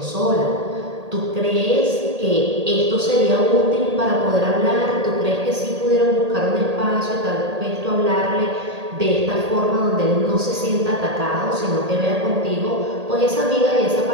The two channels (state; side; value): late; left; 1.8 ms